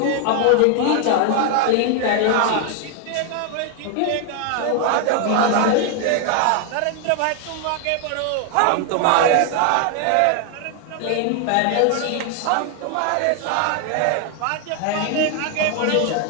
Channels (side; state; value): both; different; correlation 0.00